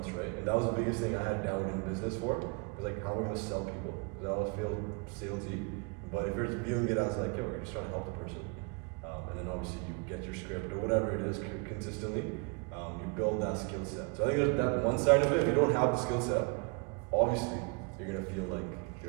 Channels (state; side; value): quieter; left; 32.1 dB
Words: right? And that was the biggest thing I had doubt in business for. Was like, how am I gonna sell people? Because I always feel salesy. But if you're viewing it as like, yo, you're just trying to help the person, and then obviously you get your script or whatever it is consistently, you build that skill set. So I think there's that one side of it. If you don't have the skill set, obviously you're gonna feel like